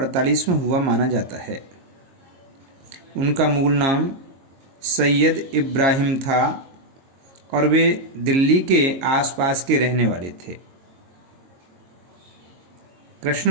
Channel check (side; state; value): left; late; 22 ms